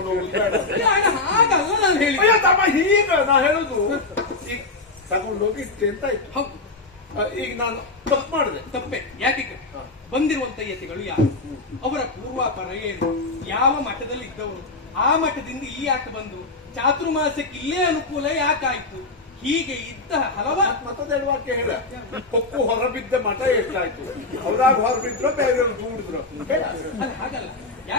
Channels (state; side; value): quieter; right; 3.4 dB